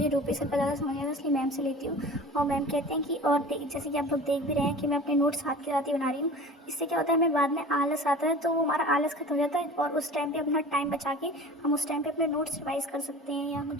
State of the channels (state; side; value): normal; both; correlation 0.39